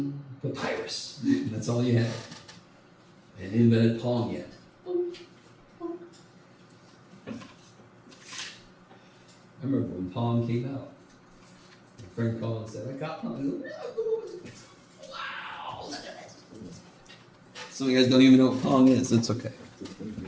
papyrus, that's all you had. And invented Pong yet. I remember when Pong came out. My friend called and said, I got Pong. I go, wow, look at this. Some of you guys don't even know what Pong is. It's okay.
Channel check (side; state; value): both; identical; correlation 1.00